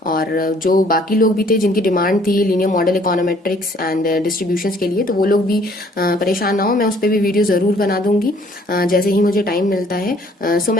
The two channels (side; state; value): both; normal; correlation 0.60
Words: और जो बाकी लोग भी थे जिनकी डिमांड थी linear model econometrics and distributions के लिए, तो वो लोग भी परेशान ना हो, मैं उस पर भी वीडियो जरूर बना दूंगी जैसे ही मुझे टाइम मिलता है। सो